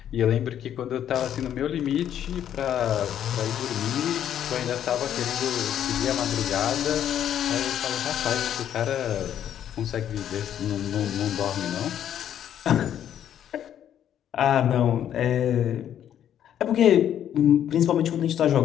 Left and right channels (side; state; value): right; quieter; 10.2 dB